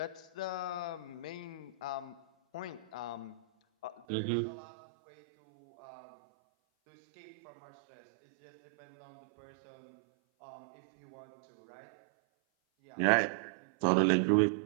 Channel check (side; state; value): left; drops out; at 4.0 s